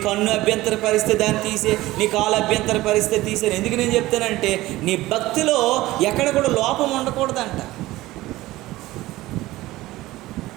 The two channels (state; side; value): quieter; left; 17.6 dB